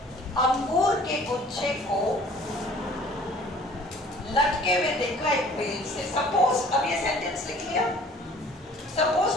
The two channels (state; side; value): normal; both; correlation 0.52